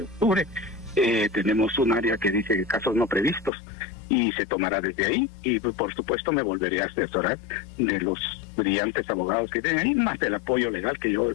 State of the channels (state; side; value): drops out; right; at 3.5 s